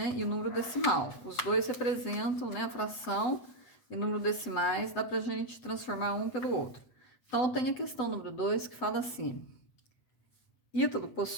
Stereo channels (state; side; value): late; right; 8.0 ms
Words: e número decimal. Os dois representam, né, a fração e número decimais, dá para a gente transformar um pelo outro. Então, tem a questão número 2 que fala assim: Ítalo